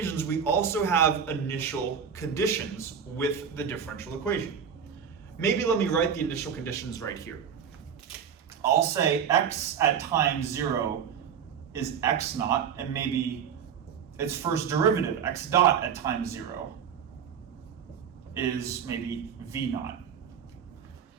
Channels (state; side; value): quieter; left; 7.5 dB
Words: we also have initial conditions with the differential equation. Maybe let me write the initial conditions right here. I'll say x at time 0 is x naught, and maybe its first derivative, x dot at time 0, is maybe v naught.